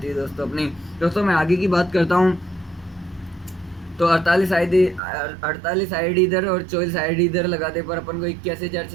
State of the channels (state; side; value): drops out; left; at 5.0 s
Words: है दोस्तों अपनी। दोस्तों मैं आगे की बात करता हूँ तो 48 आईडी इधर और 24 आईडी इधर लगाते पर अपन को